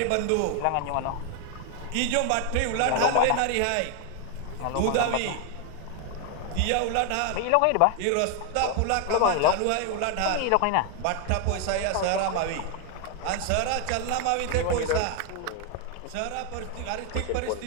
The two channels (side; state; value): both; different; correlation 0.01